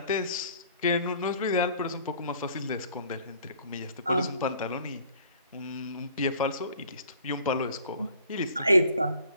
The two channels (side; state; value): both; inverted; correlation -0.54